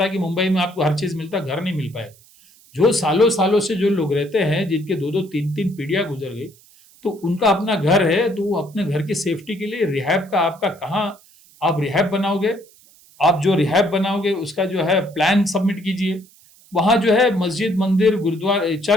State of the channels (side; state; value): right; noise; hiss, 27 dB below the sound